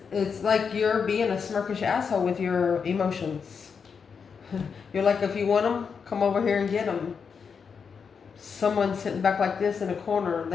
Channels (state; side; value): quieter; right; 6.1 dB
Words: it's like you're being a smirkish asshole with your emotions. You're like, if you want them, come over here and get them. Someone's sitting back like this in a corner.